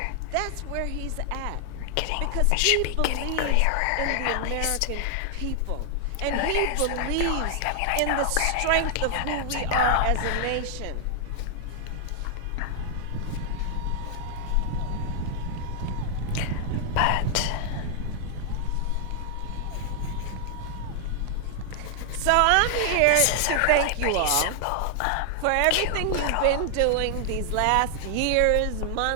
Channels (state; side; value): different; both; correlation 0.00